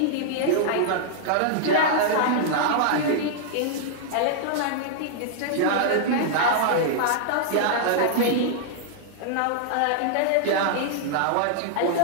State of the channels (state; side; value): different; both; correlation -0.01